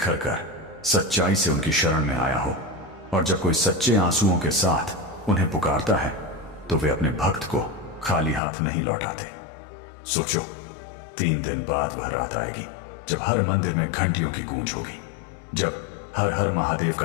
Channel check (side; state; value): right; drops out; at 8.4 s